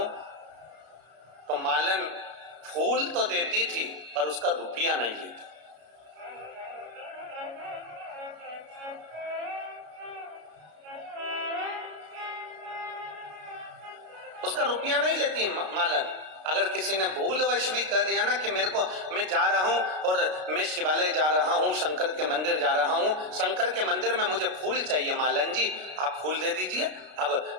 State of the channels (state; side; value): late; left; 33 ms